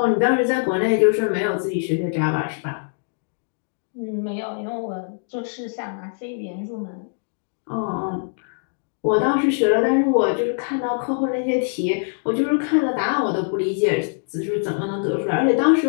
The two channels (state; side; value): silent; right; digital silence